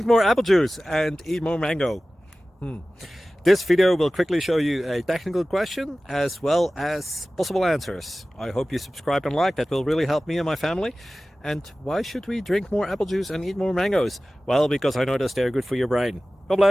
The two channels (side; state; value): both; normal; correlation 0.97